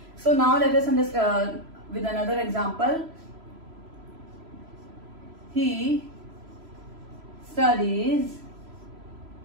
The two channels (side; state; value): left; late; 3.0 ms